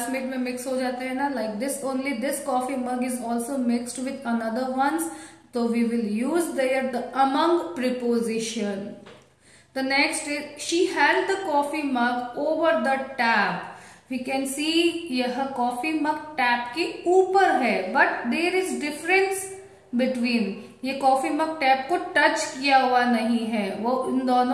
में मिक्स हो जाते हैं ना, like this only. This coffee mug is also mixed with another ones, तो we will use there the among preposition. The next is she held the coffee mug over the tap. We can see यह coffee mug tap के ऊपर है, but there is difference between. ये coffee mug tap को touch किया हुआ नहीं है, वो इन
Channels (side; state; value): both; identical; correlation 1.00